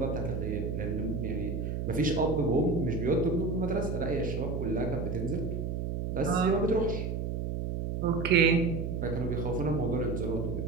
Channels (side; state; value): right; noise; hum, 2 dB below the sound